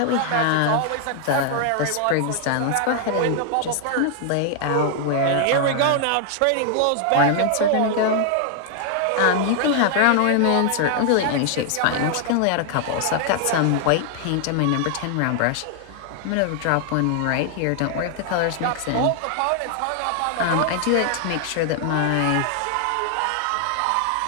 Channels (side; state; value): both; different; correlation 0.00